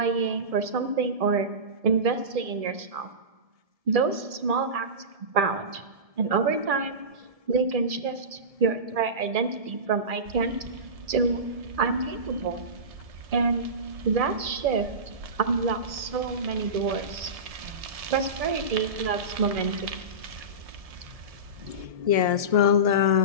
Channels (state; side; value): late; left; 1.7 ms